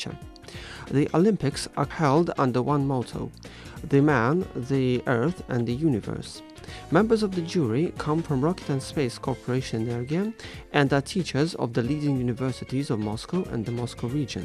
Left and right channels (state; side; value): identical; both; correlation 1.00